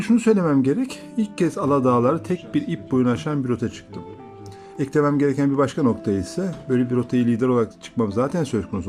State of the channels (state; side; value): identical; both; correlation 1.00